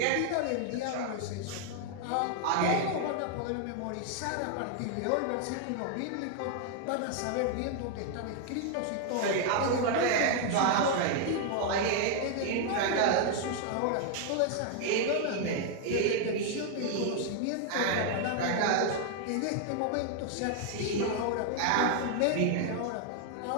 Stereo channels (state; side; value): different; both; correlation 0.00